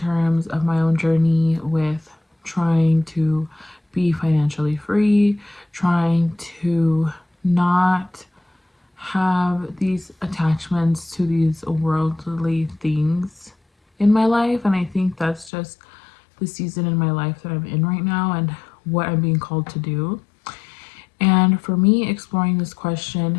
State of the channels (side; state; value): right; drops out; at 15.5 s